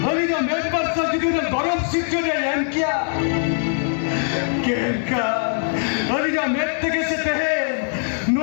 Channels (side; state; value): right; silent; 59 dB below the other